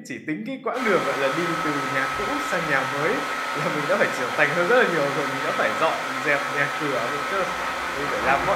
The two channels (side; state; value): both; identical; correlation 1.00